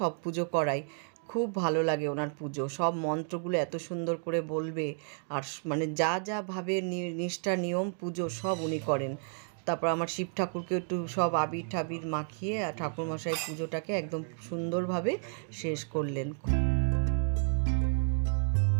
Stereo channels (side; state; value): left; silent; 57 dB below the other